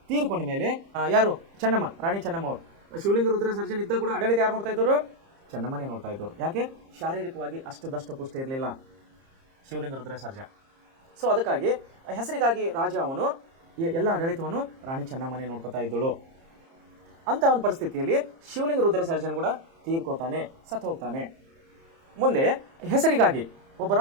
ತೀರ್ಕೊಂಡ ಮೇಲೆ ಯಾರು? ಚೆನ್ನಮ್ಮ, ರಾಣಿ ಚೆನ್ನಮ್ಮ ಅವರು. ಶಿವಲಿಂಗ ರುದ್ರ ಸರ್ಜನ್ ಇದ್ದಾಗ ಕೂಡ ಆಡಳಿತ ಯಾರು ನೋಡ್ತಾ ಇದ್ದರು? ಚೆನ್ನಮ್ಮನೇ ನೋಡ್ತಾ ಇದ್ದರು. ಯಾಕೆ? ಶಾರೀರಿಕವಾಗಿ ಅಷ್ಟು ದಷ್ಟಪುಷ್ಟ ಇರಲಿಲ್ಲ ಶಿವಲಿಂಗ ರುದ್ರ ಸರ್ಜ. ಸೊ ಅದಕ್ಕಾಗಿ ಹೆಸರಿಗಾಗಿ ರಾಜ ಅವನು ಎಲ್ಲ ಆಡಳಿತವನ್ನು ರಾಣಿ ಚೆನ್ನಮ್ಮನೇ ನೋಡ್ಕೋತಾ ಇದ್ದಳು. ಅಂಥ ಒಂದು ಪರಿಸ್ಥಿತಿಯಲ್ಲಿ ಶಿವಲಿಂಗ ರುದ್ರ ಸರ್ಜನ್ ಕೂಡ ತೀರ್ಕೋತಾನೆ, ಸತ್ತು ಹೋಗ್ತಾನೆ. ಮುಂದೆ ಹೆಸರಿಗಾಗಿ ಒಬ್ಬ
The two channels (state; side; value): late; left; 30 ms